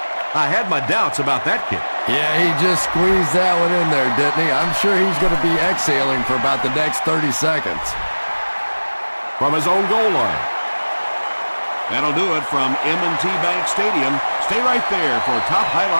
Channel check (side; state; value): both; inverted; correlation -1.00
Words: I had my doubts about that kick. Yeah, he just squeezed that one in there, didn't he? I'm sure he's going to be exhaling for about the next 30 seconds. From his own goal line. That'll do it from M&T Bank Stadium. Stay right there for top